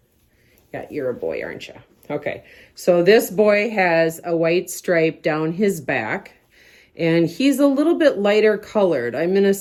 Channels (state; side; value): identical; both; correlation 1.00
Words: Yeah, you're a boy, aren't you? Okay, so this boy has a white stripe down his back, and he's a little bit lighter colored. I'm gonna